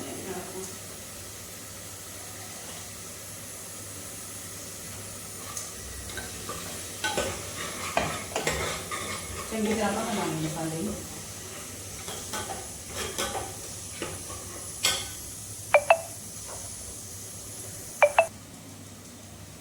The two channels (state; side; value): identical; both; correlation 1.00